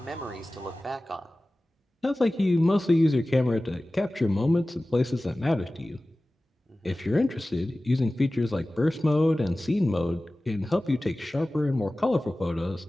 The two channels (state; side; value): normal; both; correlation 0.97